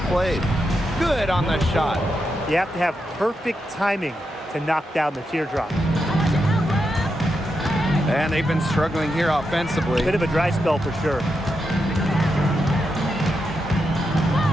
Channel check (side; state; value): both; normal; correlation 0.85